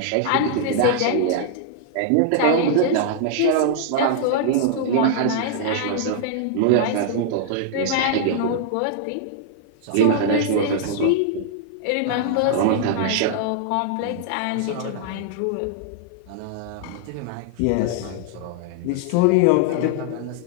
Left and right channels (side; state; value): both; different; correlation -0.01